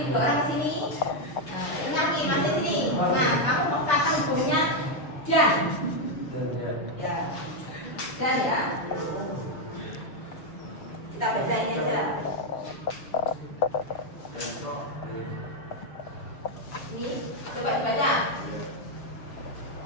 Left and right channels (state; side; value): late; right; 6.6 ms